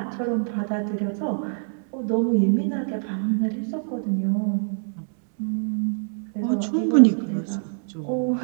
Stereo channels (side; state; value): left; silent; 62 dB below the other